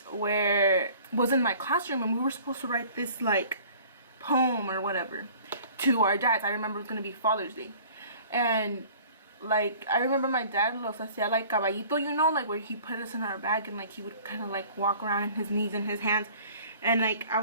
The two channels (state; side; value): inverted; both; correlation -0.49